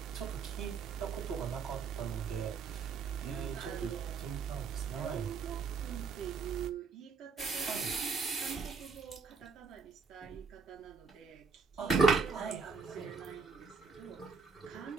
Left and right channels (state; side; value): quieter; left; 5.1 dB